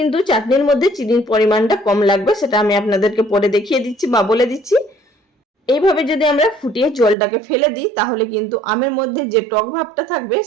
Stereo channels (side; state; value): left; drops out; at 7.2 s